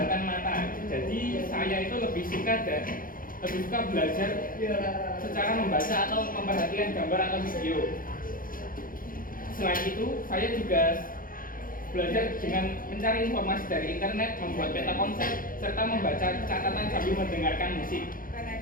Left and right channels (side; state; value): right; late; 0.41 ms